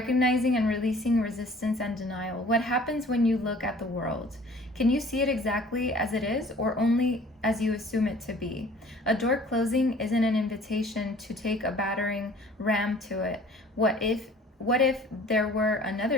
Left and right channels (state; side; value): normal; both; correlation 0.50